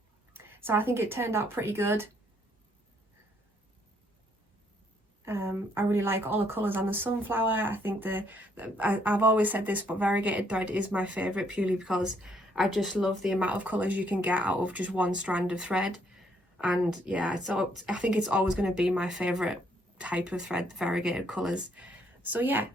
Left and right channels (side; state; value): both; normal; correlation 0.69